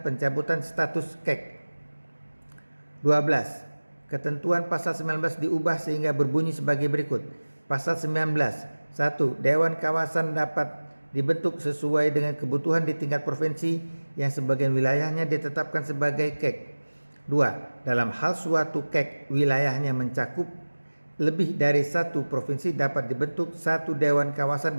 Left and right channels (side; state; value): both; inverted; correlation -1.00